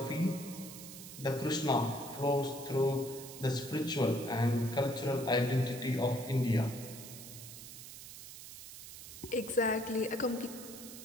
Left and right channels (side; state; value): right; noise; hiss, 13 dB below the sound